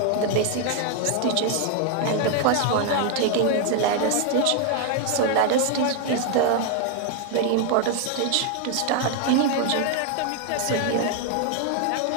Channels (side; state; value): both; different; correlation 0.00